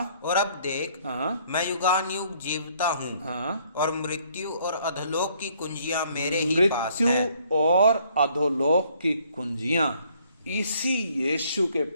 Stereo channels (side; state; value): both; inverted; correlation -0.64